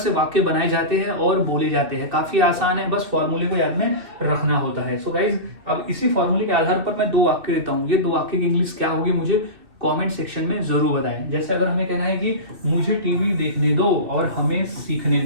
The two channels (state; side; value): late; left; 2.6 ms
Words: वाक्य बनाए जाते हैं और बोले जाते हैं, काफी आसान है, बस फॉर्मूले को याद में रखना होता है। सो गाइज अब इसी फॉर्मूले के आधार पर मैं 2 वाक्य देता हूँ, ये 2 वाक्य की इंग्लिश क्या होगी मुझे कमेंट सेक्शन में जरूर बताएं। जैसे अगर हमें कहना है कि मुझे टीवी देखने दो और हमें सीखने